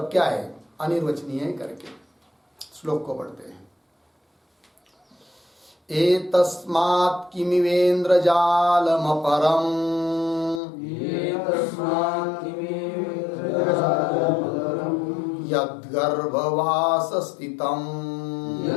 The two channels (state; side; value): drops out; right; at 10.6 s